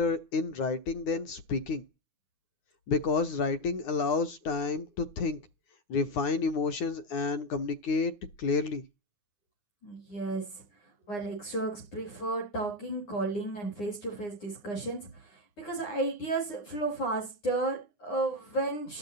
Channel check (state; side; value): late; right; 9.7 ms